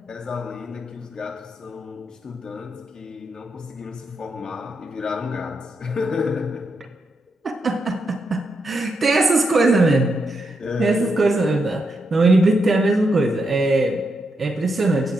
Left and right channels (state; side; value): normal; both; correlation 0.83